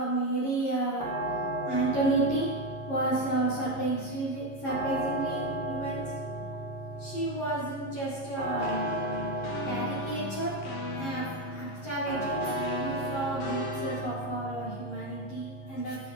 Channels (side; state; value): right; late; 11 ms